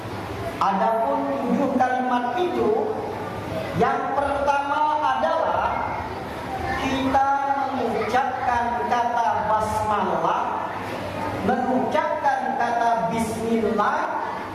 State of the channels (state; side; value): identical; both; correlation 1.00